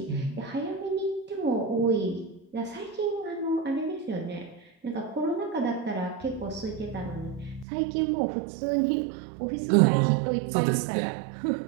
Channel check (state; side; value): drops out; left; at 7.7 s